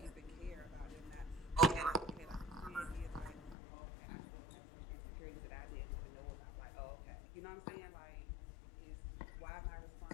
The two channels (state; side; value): drops out; right; at 3.6 s